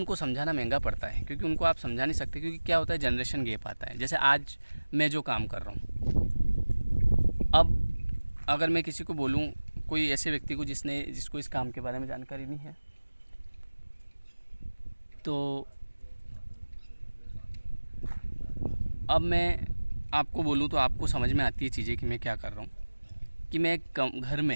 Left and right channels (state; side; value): inverted; both; correlation -1.00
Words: समझाना महंगा पड़ता है, क्योंकि उनको आप समझा नहीं सकते, क्योंकि क्या होता है जनरेशन गैप आता है। जैसे आज मैं जो काम कर रहा हूँ, अब अगर मैं किसी को बोलूँ, कोई ऐसे व्यक्ति को जिसको इस काम के बारे में जानकारी नहीं है, तो अब मैं आपको बोलूँ तो आपको समझ में आती है चीज़ें कि मैं क्या कर रहा हूँ। कि